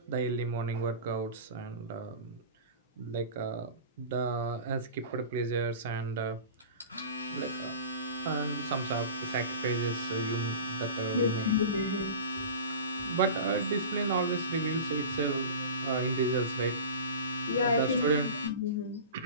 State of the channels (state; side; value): inverted; both; correlation -0.35